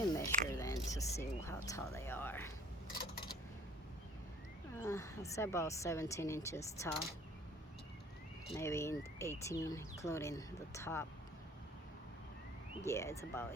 measure them to see how tall they are. I'll say about 17 inches tall, maybe 18, including the top. Yeah, it's about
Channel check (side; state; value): both; normal; correlation 0.54